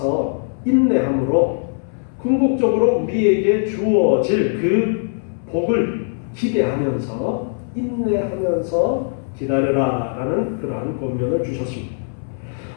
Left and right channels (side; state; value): right; silent; 64 dB below the other